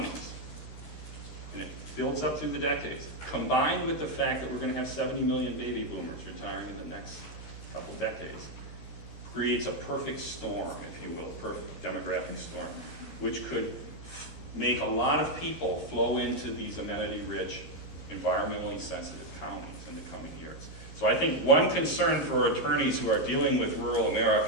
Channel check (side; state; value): right; late; 13 ms